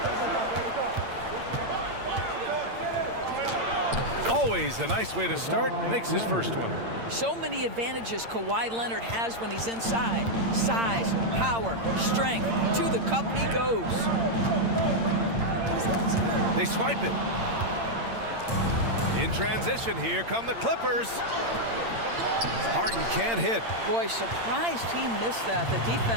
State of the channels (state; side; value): late; left; 8.8 ms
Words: Always a nice way to start, makes his first one. So many advantages Kawhi Leonard has when he's inside. Size, power, strength. To the cup he goes. They swipe it. In transition, here come the Clippers. Harden can't hit. Boy, surprised he missed that. The